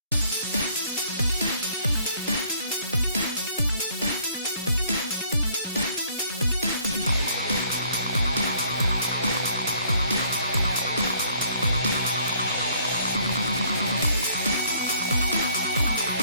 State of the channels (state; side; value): inverted; both; correlation -0.62